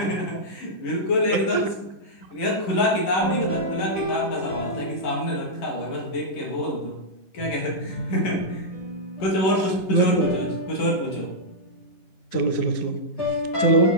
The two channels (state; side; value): late; right; 10 ms